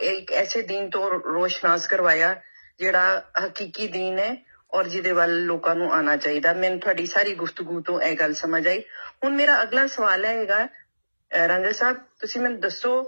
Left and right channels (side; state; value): both; inverted; correlation -1.00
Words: ਇੱਕ ਐਸੇ ਦੀਨ ਤੋਂ ਰੋਸ਼ਨਾਸ ਕਰਵਾਇਆ ਜਿਹੜਾ ਹਕੀਕੀ ਦੀਨ ਹੈ ਔਰ ਜਿਹਦੇ ਵੱਲ ਲੋਕਾਂ ਨੂੰ ਆਉਣਾ ਚਾਹੀਦਾ। ਮੈਨੂੰ ਤੁਹਾਡੀ ਸਾਰੀ ਗੁਫ਼ਤਗੂ ਤੋਂ ਇਹ ਗੱਲ ਸਮਝ ਆਈ। ਹੁਣ ਮੇਰਾ ਅਗਲਾ ਸਵਾਲ ਹੈਗਾ, ਰਾਂਝਾ ਸਾਹਿਬ ਤੁਸੀਂ ਮੈਨੂੰ ਦੱਸੋ